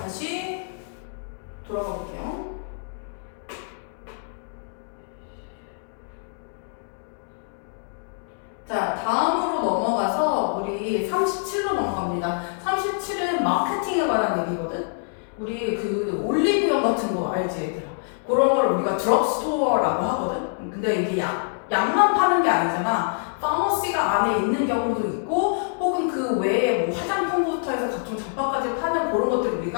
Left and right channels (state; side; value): silent; right; 62 dB below the other